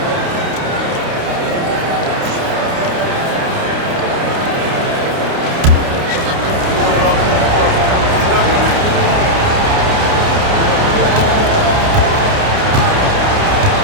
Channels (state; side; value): late; left; 29 ms